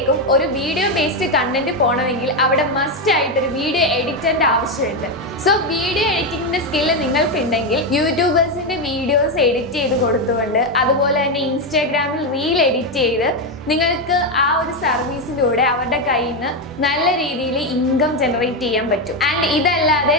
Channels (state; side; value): normal; both; correlation 0.08